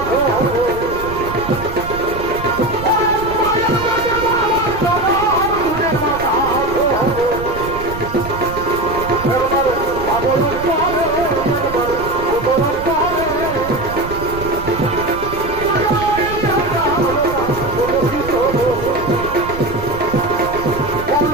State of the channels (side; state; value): right; noise; rumble, 11 dB below the sound